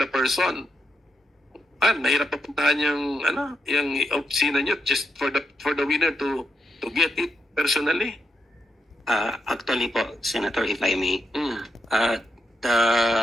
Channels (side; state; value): both; normal; correlation 0.82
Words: person. Mahirap papuntahan yung opisina nyo just for the winner to get it personally. Actually po, Senator, if I may,